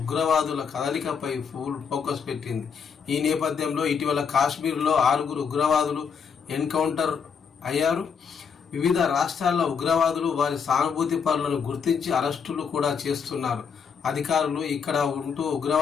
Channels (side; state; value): right; quieter; 6.4 dB